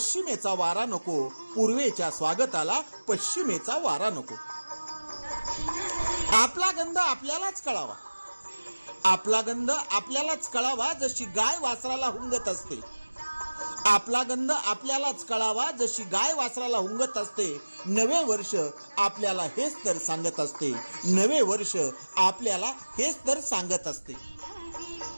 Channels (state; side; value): inverted; both; correlation -1.00